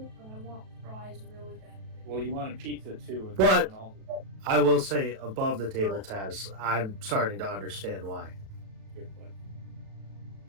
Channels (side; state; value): left; late; 37 ms